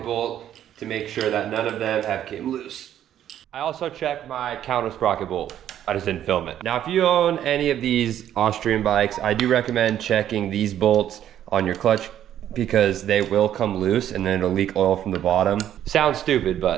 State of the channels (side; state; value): left; quieter; 10.9 dB